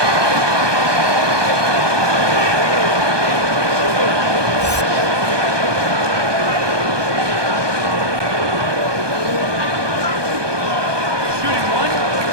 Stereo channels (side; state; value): left; late; 1.2 ms